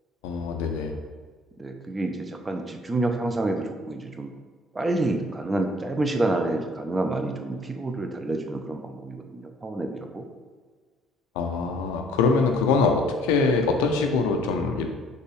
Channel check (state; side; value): normal; both; correlation 0.57